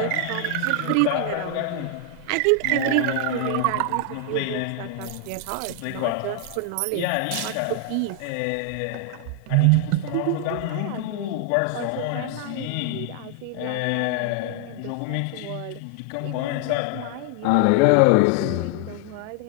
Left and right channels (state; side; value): different; both; correlation 0.00